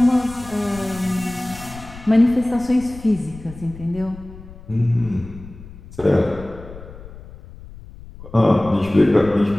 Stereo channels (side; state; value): left; noise; rumble, 17 dB below the sound